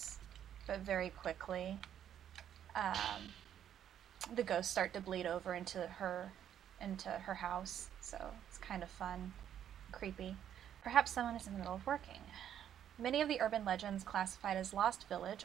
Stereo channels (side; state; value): left; quieter; 9.9 dB